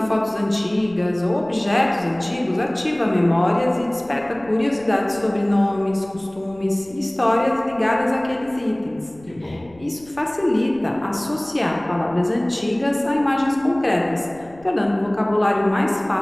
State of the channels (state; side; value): noise; left; rumble, 25 dB below the sound